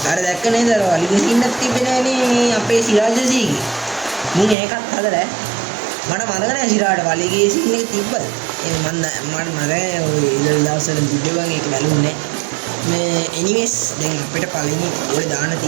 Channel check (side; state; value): left; drops out; at 4.5 s